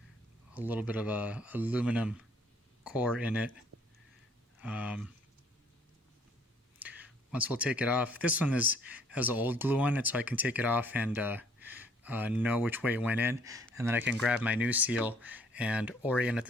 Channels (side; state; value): both; normal; correlation 0.61